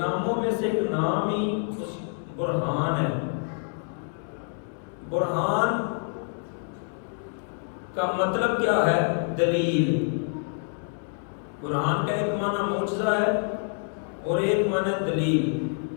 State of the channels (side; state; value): right; silent; 57 dB below the other